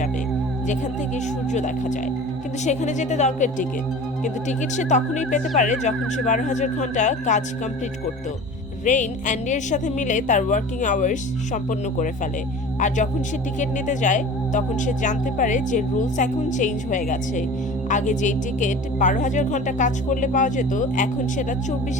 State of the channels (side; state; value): both; normal; correlation 0.38